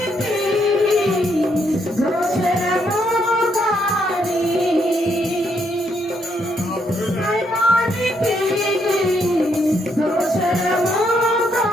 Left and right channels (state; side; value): normal; both; correlation 0.75